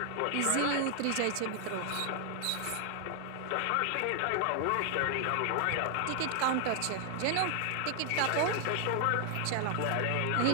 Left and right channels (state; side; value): different; both; correlation 0.00